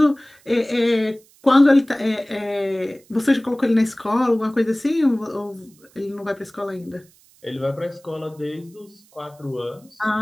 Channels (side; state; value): right; noise; hiss, 29 dB below the sound